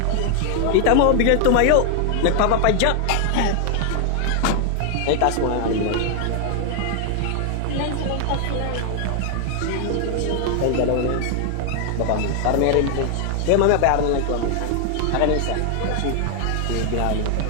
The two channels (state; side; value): different; both; correlation 0.00